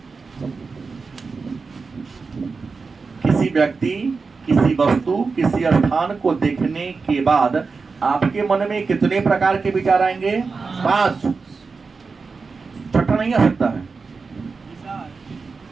किसी व्यक्ति, किसी वस्तु, किसी स्थान को देखने के बाद आपके मन में कितने प्रकार के विचार आएंगे? 5। छठा नहीं आ सकता है।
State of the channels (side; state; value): left; quieter; 4.6 dB